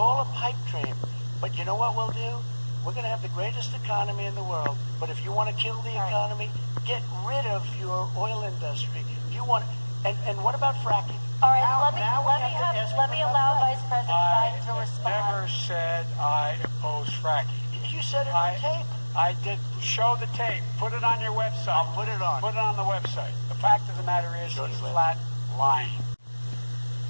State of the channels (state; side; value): inverted; both; correlation -1.00